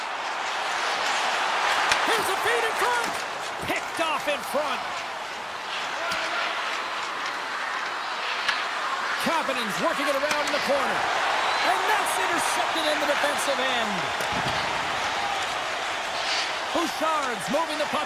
Here's a feed in front. Picked picked off in front. Kapanen's working it around in the corner. And that's intercepted in the defensive end. Bouchard's moving the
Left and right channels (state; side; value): identical; both; correlation 1.00